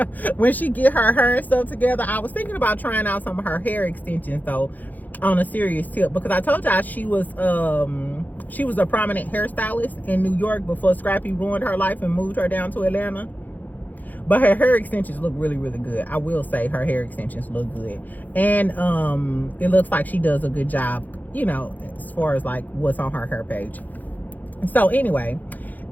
When she get her hair and stuff together, I was thinking about trying out some of her hair extensions though, on a serious tip, because I told y'all she was a prominent hairstylist in New York before Scrappy ruined her life and moved her down to Atlanta. But her hair extensions look really, really good. I will say her hair extensions look good. And it looks like she does a good job, you know, as far as like what's on her hair page. So anyway,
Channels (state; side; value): late; right; 0.082 ms